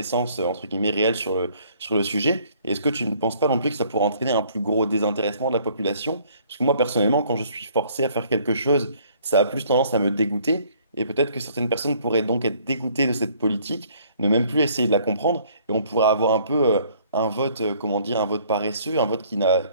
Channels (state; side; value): inverted; both; correlation -0.60